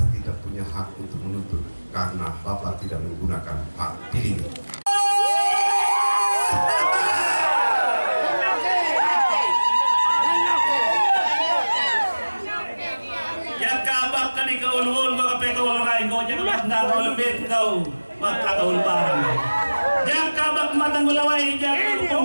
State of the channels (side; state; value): both; inverted; correlation -1.00